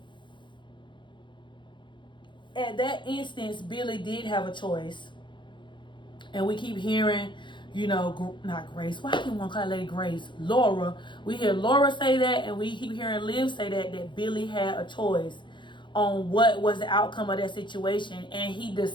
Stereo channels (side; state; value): right; late; 0.23 ms